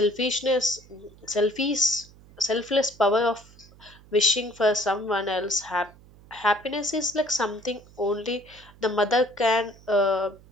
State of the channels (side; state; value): right; noise; hum, 24 dB below the sound